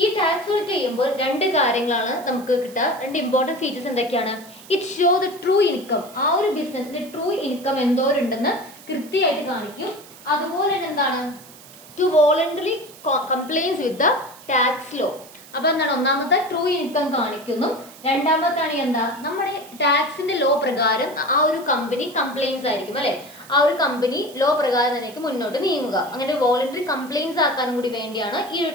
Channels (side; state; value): right; noise; hiss, 20 dB below the sound